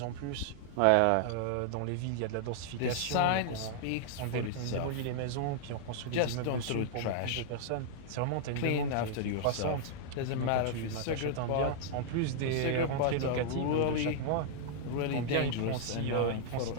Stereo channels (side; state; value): both; different; correlation -0.01